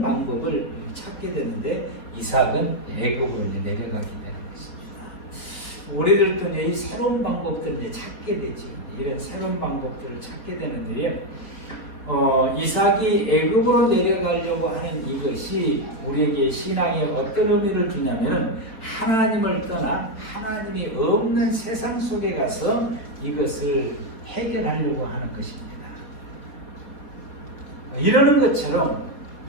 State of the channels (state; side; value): late; right; 4.0 ms